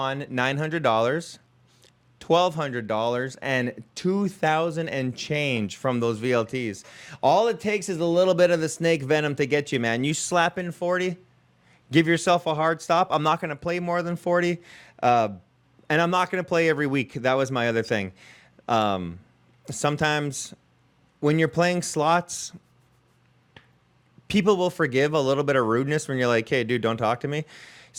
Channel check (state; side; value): identical; both; correlation 1.00